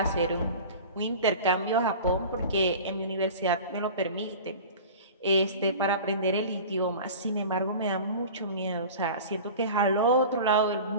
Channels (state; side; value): inverted; both; correlation -0.37